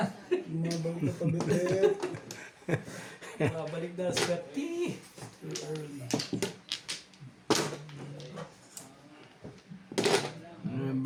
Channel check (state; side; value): identical; both; correlation 1.00